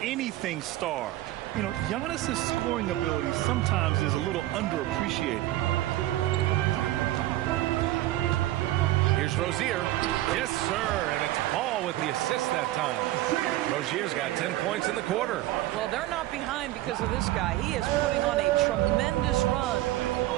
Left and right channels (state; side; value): quieter; left; 15.8 dB